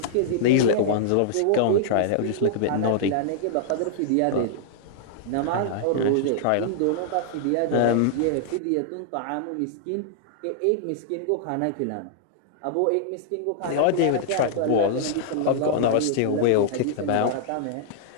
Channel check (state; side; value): different; both; correlation -0.01